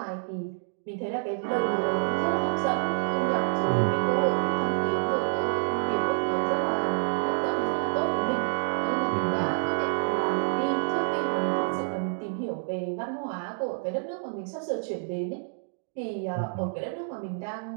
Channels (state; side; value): silent; left; digital silence